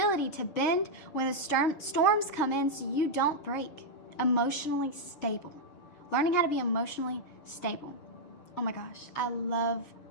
to bend when the storms come in so you don't break. Emotionally stable. Learning how to be emotionally stable. Oh my gosh, I love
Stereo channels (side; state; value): right; late; 6.5 ms